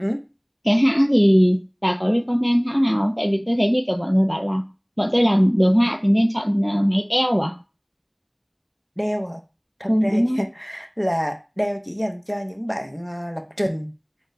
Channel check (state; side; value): identical; both; correlation 1.00